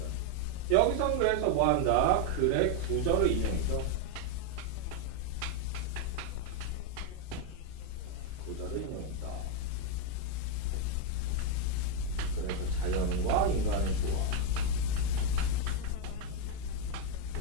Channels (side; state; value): both; different; correlation 0.01